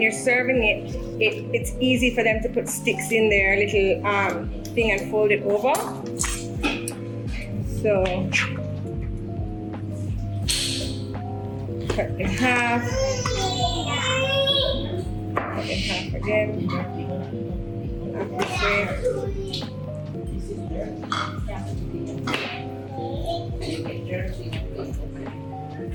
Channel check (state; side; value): identical; both; correlation 1.00